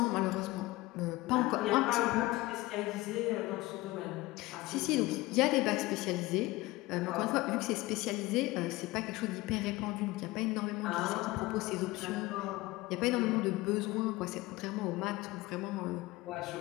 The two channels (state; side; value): quieter; right; 20.0 dB